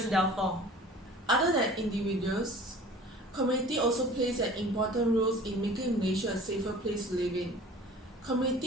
downfall. Other than individuals, community also plays an important role in making Malaysia a safer place to live in.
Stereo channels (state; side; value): normal; both; correlation 0.45